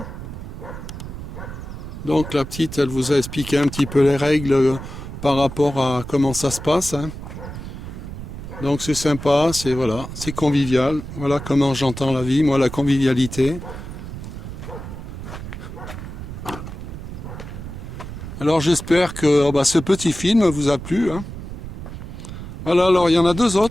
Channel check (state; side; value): noise; right; rumble, 10 dB below the sound